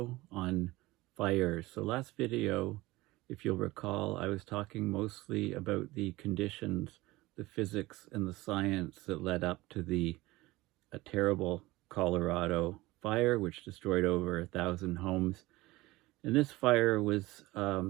on fire. So last video, if you'll recall, I was talking mostly about the conditions, the physics and the science that led up to a terrible Colorado fire, which destroyed over 1,000 homes. And this fire was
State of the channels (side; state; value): left; quieter; 19.8 dB